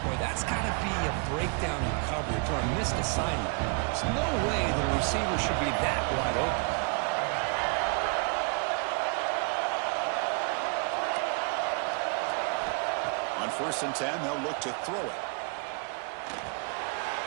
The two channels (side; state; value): left; quieter; 36.4 dB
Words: Boy, that's got to be a breakdown in coverage or a missed assignment. There's no way that a receiver should be that wide open. On first and 10, they'll look to throw it.